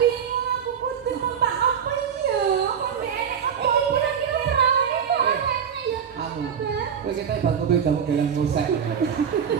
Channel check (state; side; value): quieter; left; 7.7 dB